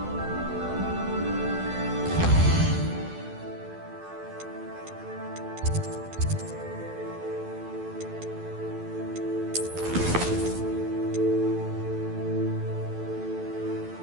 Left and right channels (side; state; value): left; late; 12 ms